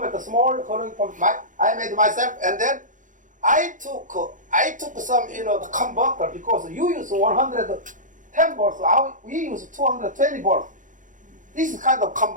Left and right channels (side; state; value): left; late; 0.37 ms